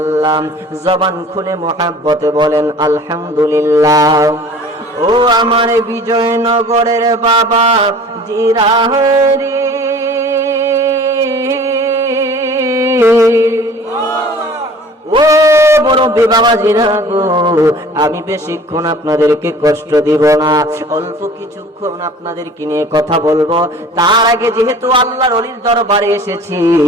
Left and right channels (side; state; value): both; normal; correlation 0.47